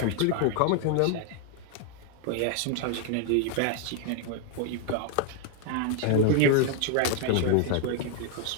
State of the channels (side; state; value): both; different; correlation 0.00